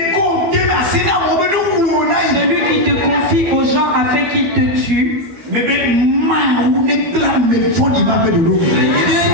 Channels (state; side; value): late; left; 13 ms